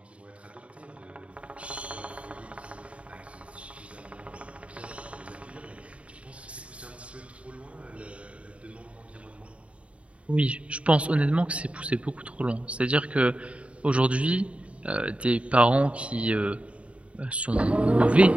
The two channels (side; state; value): left; late; 0.062 ms